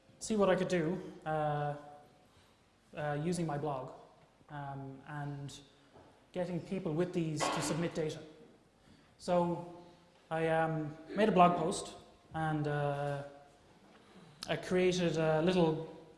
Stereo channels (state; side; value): identical; both; correlation 1.00